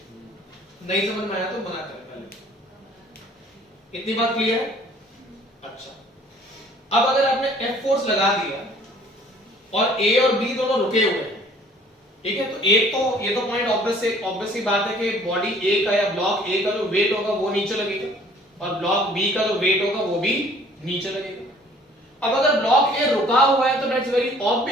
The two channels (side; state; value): both; normal; correlation 0.55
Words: नहीं समझ में आया तो मना करें पहले इतनी बात क्लियर है अच्छा अब अगर आपने एफ फोर्स लगा दिया और ए और बी दोनों रुके हुए हैं ठीक है तो एक तो ये तो पॉइंट ऑब्वियस सी बात है कि बॉडी ए का या ब्लॉक ए का जो वेट होगा वो नीचे लगेगा और ब्लॉक बी का जो वेट होगा वो भी नीचे लगेगा अब अगर ब्लॉक ए रुका हुआ है तो दैट्स वेरी